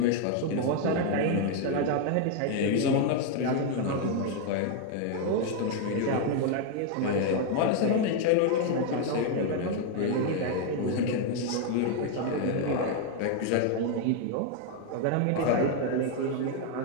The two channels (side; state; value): both; different; correlation 0.01